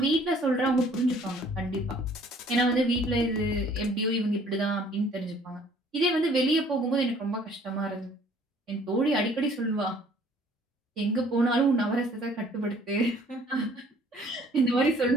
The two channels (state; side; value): normal; both; correlation 0.57